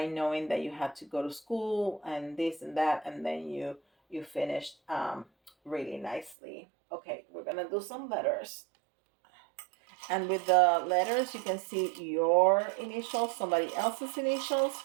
knowing that you had to go to school and this and that, and then you finished really nicely. Okay, we're gonna do some letters. And with the letters, you can see your initials, somebody else's initials,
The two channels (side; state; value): left; drops out; at 6.4 s